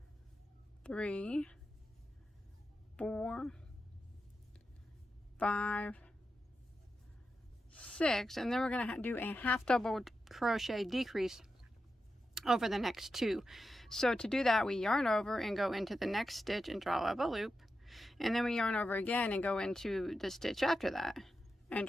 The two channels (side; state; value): both; normal; correlation 0.89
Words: 3, 4, 5, 6, and then we're going to do a half double crochet decrease over the next 2. So to do that, we yarn over and go into the next stitch and draw up a loop, and then we yarn over again and go into the stitch after that and